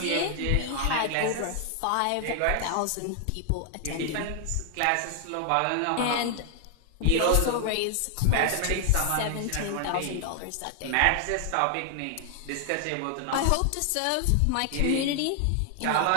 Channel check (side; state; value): both; different; correlation 0.00